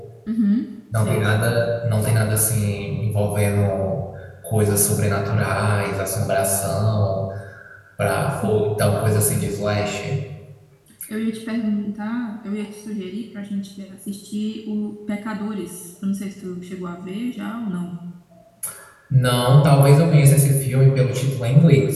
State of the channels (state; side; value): identical; both; correlation 1.00